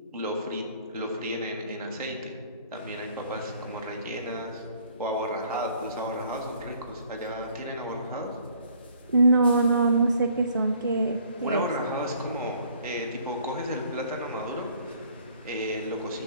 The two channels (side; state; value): both; inverted; correlation -0.59